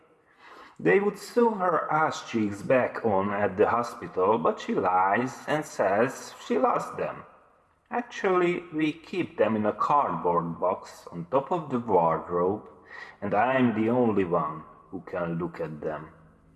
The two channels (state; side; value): identical; both; correlation 1.00